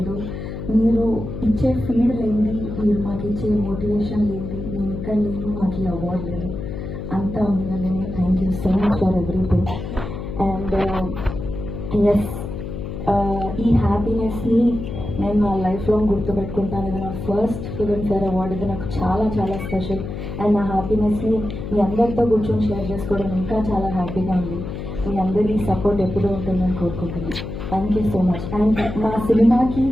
మీరు ఇచ్చే ఫీడ్ లేనిది, మీరు మాకు ఇచ్చే మోటివేషన్ లేనిది, నేను ఇక్కడ లేని మాకు ఈ అవార్డు లేదు. అంతా మీ వల్లనే. Thank you so much for everything. And yes, ఈ హ్యాపీనెస్ని నేను నా లైఫ్ లాంగ్ గుర్తుపెట్టుకుంటాను. ఇది నా ఫస్ట్ ఫిల్మ్ఫేర్ అవార్డు. ఇది నాకు చాలా చాలా స్పెషల్. అండ్ నా హ్యాపీనెస్ని మీ అందరితో కూర్చొని షేర్ చేసుకోవడం ఇంకా చాలా హ్యాపీగా ఉంది. మీ అందరి సపోర్ట్ ఎప్పుడూ ఉంటుందని కోరుకుంటున్నాను. Thank you so much. And మా సినిమాకి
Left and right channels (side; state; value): left; noise; hum, 7 dB below the sound